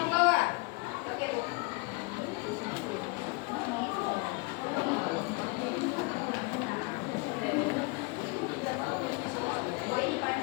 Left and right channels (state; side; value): quieter; right; 27.5 dB